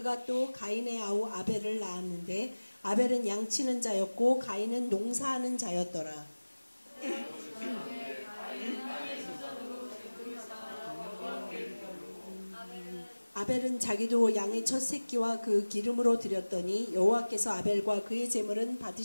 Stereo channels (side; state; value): both; inverted; correlation -1.00